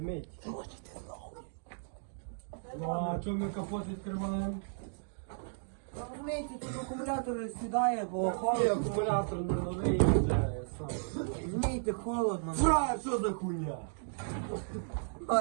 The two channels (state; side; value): silent; left; digital silence